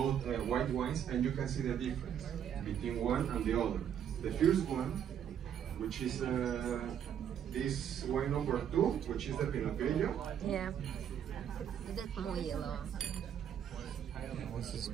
white wines, and you can see the difference between one and the other. The first one, which is this wine number 2, which is the Pinot Grigio. Yeah, that's more yellow. This is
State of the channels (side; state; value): left; quieter; 9.1 dB